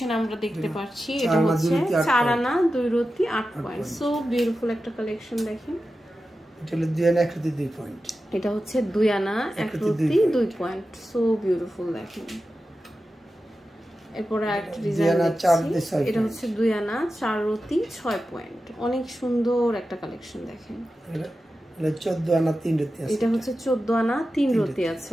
আমরা দেখতে পাচ্ছি। এটা হচ্ছে 4 আনা 2 রতি 8 পয়েন্ট। সো বিউটিফুল একটা কালেকশন দেখেন। এটা হলো 2 আনা 1 রতি 2 পয়েন্ট, এটা হচ্ছে 2 আনা 1 রতি 2 পয়েন্ট। সো বিউটিফুল দেখেন। এরপরে আরেকটা ডিজাইন দেখছি, এটা হচ্ছে 2 আনা 4 রতি 6 পয়েন্ট, অনেক সুন্দর একটা কালেকশন দেখেন। এটা 14 আনা 3 রতি আছে, এটা হচ্ছে 14 আনা 3 রতি আছে।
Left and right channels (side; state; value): both; normal; correlation 0.92